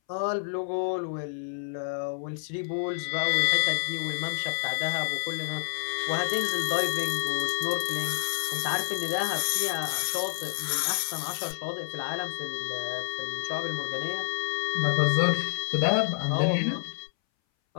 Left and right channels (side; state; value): right; silent; 59 dB below the other